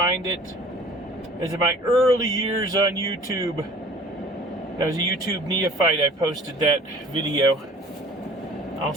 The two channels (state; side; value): normal; both; correlation 0.47